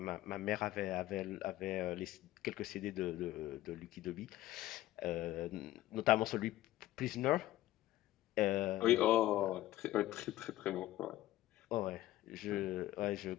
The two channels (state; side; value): quieter; right; 15.4 dB